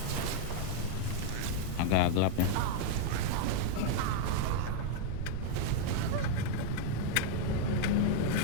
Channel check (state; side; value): different; both; correlation 0.00